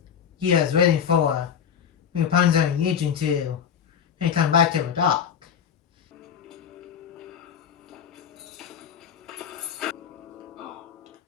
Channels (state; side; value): quieter; right; 7.9 dB